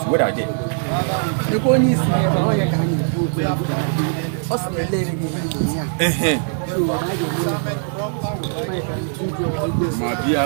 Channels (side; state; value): left; silent; 64 dB below the other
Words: what are they? Before